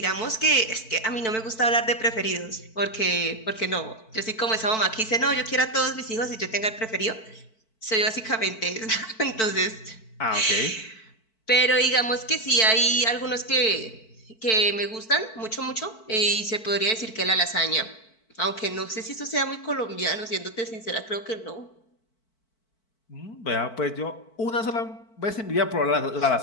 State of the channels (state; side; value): late; right; 4.5 ms